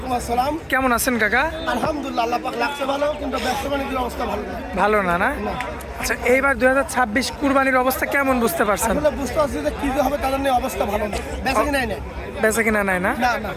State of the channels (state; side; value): identical; both; correlation 1.00